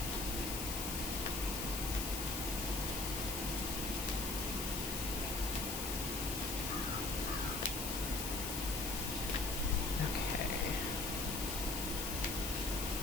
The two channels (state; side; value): noise; left; hiss, 3 dB below the sound